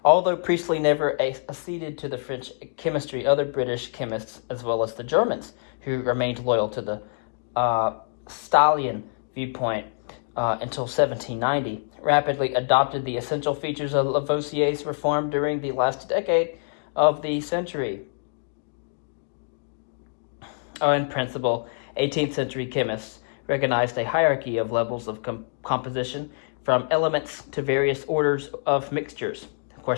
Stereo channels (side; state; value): right; silent; digital silence